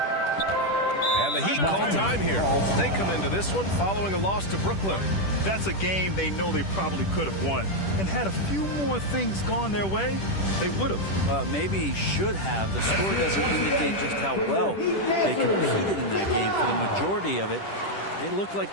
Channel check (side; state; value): right; late; 10 ms